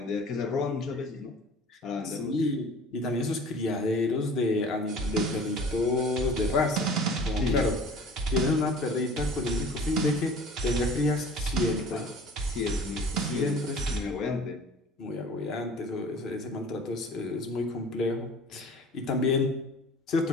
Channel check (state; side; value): normal; both; correlation 0.45